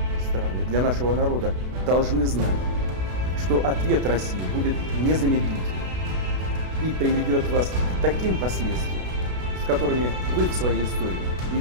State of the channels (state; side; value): late; left; 32 ms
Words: страны, для нашего народа, должны знать, что ответ России будет незамедлительным и приведет вас к таким последствиям, с которыми вы в своей истории